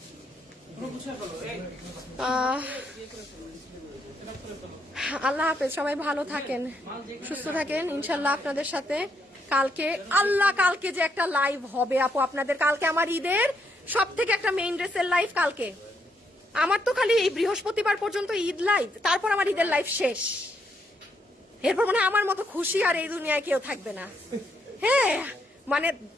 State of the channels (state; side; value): normal; both; correlation 0.76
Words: আল্লাহ হাফেজ, সবাই ভালো থাকেন সুস্থ থাকেন ইনশাল্লাহ। আপনাদের সাথে কালকে কালকে যে একটা লাইভ হবে আপু আপনাদের, কালকে আমার ঈদের সব থেকে একটা মেইন ড্রেসের লাইভ কালকে। আমার তো খালি এই বৃহস্পতিবার পর্যন্ত ঈদ লাইভ, তারপর আমার ঈদের লাইভ শেষ, এরপর মানে আমার মতো খুশি আর এই দুনিয়ায় কেউ থাকবে না। হ্যাঁ মানে